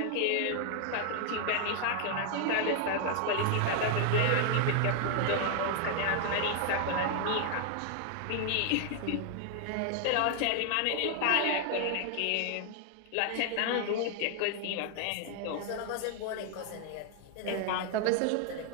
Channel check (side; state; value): both; different; correlation 0.00